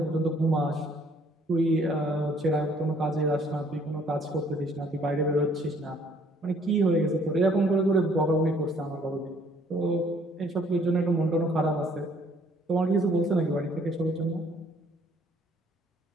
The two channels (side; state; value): both; normal; correlation 0.61